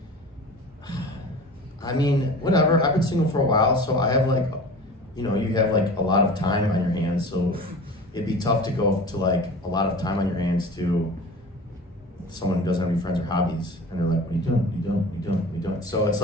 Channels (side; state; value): both; normal; correlation 0.37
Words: I mean, whatever. I've been single for a while, so I have like, you know, you have like a lot of time on your hands, so it'd be tough to go to like a lot of time on your hands to someone who doesn't have any friends or hobbies, and they're like, "What are you doing? What are you doing? What are you doing? What are you doing?" So it's